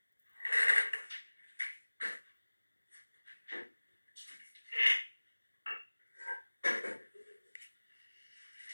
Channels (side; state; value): both; inverted; correlation -1.00